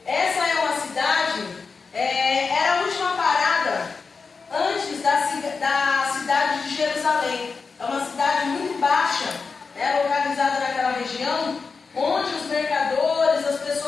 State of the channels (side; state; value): right; quieter; 4.8 dB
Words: Essa é uma cidade, era a última parada antes da cidade de Jerusalém. É uma cidade muito baixa, localizada naquela região, onde os mercadores, as